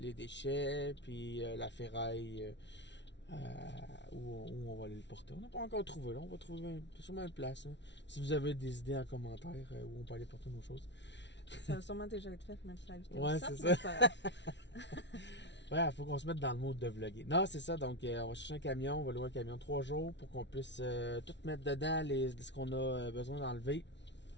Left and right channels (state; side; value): late; right; 0.51 ms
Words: déchets, puis la ferraille où on va aller le porter. On n'a pas encore trouvé, là. On va trouver sûrement une place. Hein. Si vous avez des idées en commentaire où on peut aller porter nos choses. Ça va sûrement déjà être fait, mettre la vidéo. Ouais, Ça, c'est mais ça. c'est pas grave. Ouais, faut qu'on se mette dans le mode de vlogger. Non, c'est ça. Donc, on va chercher un camion. On va louer un camion 3 jours pour qu'on puisse tout mettre dedans ce qu'on a besoin d'enlever.